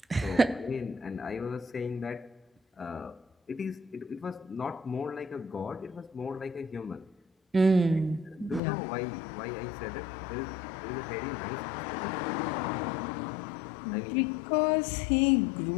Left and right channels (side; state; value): right; drops out; at 8.6 s